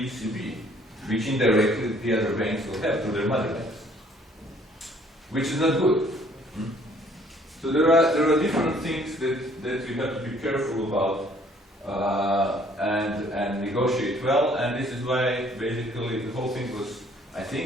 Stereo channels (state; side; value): normal; both; correlation 0.60